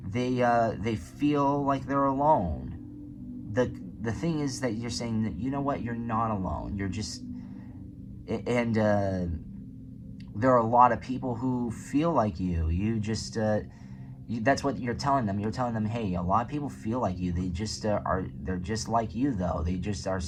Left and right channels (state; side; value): identical; both; correlation 1.00